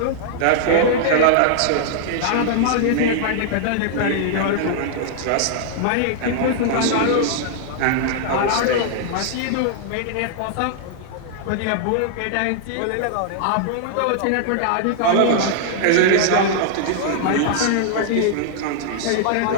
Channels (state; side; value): different; both; correlation -0.01